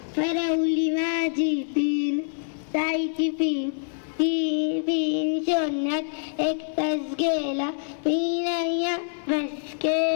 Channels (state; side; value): silent; right; digital silence